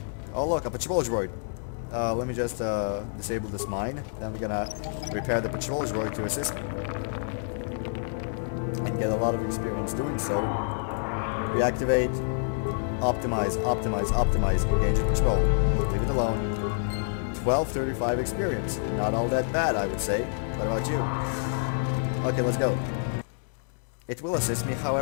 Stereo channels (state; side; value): silent; right; digital silence